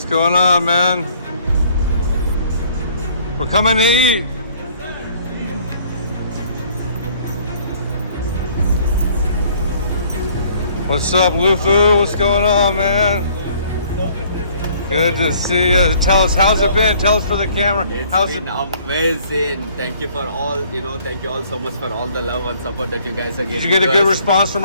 going on, man? We're coming to eat. What's up, Lufu? What's going on, man? Good to see you. Tell us, how's it been? Tell us for the camera. It's been amazing. Thank you for all, thank you all so much for all the love and support that you guys are giving. Did you get a good response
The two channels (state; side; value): inverted; both; correlation -0.59